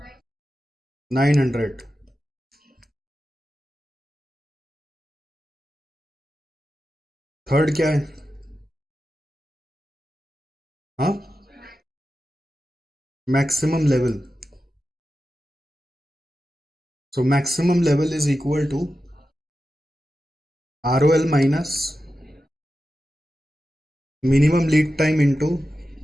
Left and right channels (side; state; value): both; normal; correlation 0.92